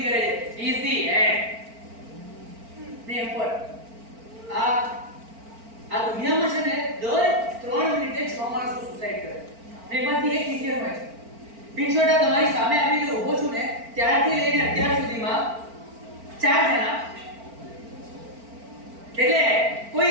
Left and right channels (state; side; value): late; left; 4.4 ms